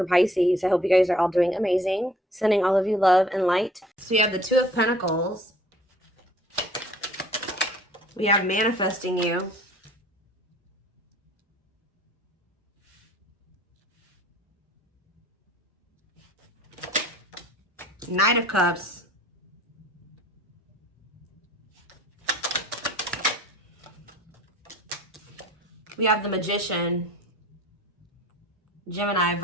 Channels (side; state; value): both; normal; correlation 0.52